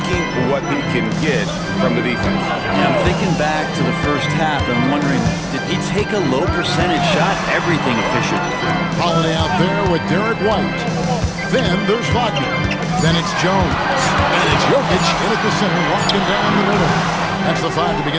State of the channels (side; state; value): both; identical; correlation 1.00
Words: what he can get from the defense. Yeah, I'm thinking back to the first half and wondering, did he take a low percentage shot? Everything efficient. Holiday out there with Derek White. Then there's Wagner. Then it's Jones. And it's Jokic in at the center, walking down the middle. That's the 5 to